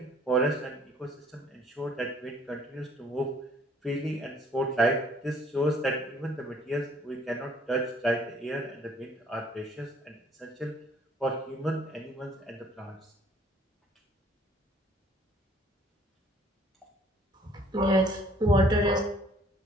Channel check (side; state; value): both; normal; correlation 0.59